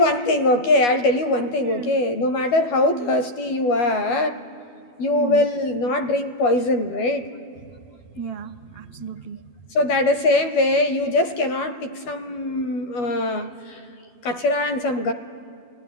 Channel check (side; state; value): right; late; 12 ms